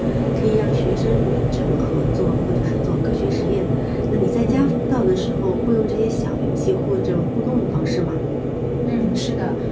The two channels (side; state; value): both; identical; correlation 1.00